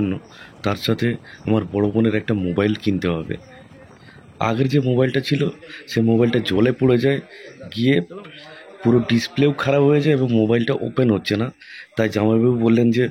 তার সাথে আমার বড় বোনের একটা মোবাইল কিনতে হবে। আগের যে মোবাইলটা ছিল সে মোবাইলটা জলে পড়ে যায়, গিয়ে পুরো ডিসপ্লেও খারাপ হয়ে যায় এবং মোবাইলটা ওপেন হচ্ছে না। তাই জামাইবাবু বললেন যে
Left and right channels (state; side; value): identical; both; correlation 1.00